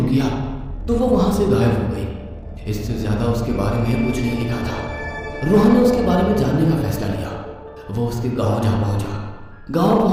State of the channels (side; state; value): both; identical; correlation 1.00